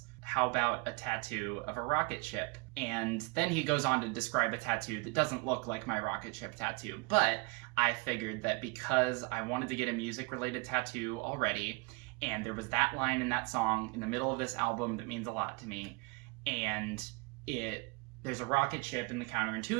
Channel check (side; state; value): left; quieter; 28.0 dB